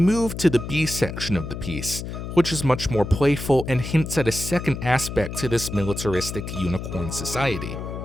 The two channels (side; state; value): left; noise; hum, 7 dB below the sound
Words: to the B section of the piece, which is much more playful and hints at a second aspect to this militaristic unicorn society.